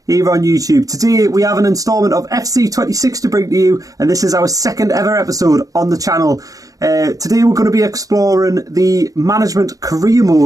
here on YouTube. Today we have an instalment of FC26 to bring to you, and this is our second ever episode on the channel. Today we're going to be exploring the management career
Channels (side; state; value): left; late; 0.17 ms